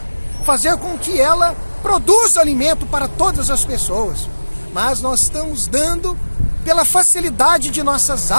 Fazer com que ela produza alimento para todas as pessoas. Mas nós estamos dando, pela facilidade de nossas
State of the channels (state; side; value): inverted; both; correlation -1.00